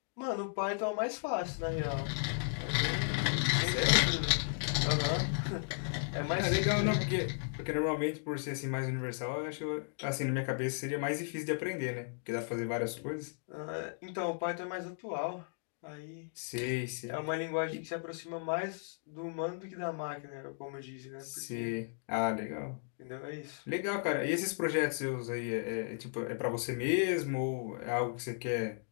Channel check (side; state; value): right; silent; digital silence